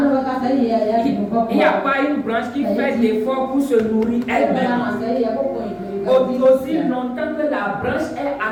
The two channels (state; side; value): identical; both; correlation 1.00